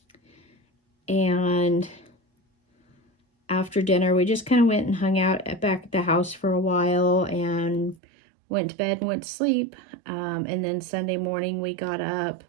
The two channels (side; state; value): left; drops out; at 8.0 s